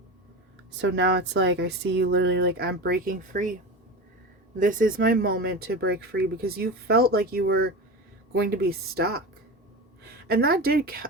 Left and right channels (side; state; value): both; normal; correlation 0.27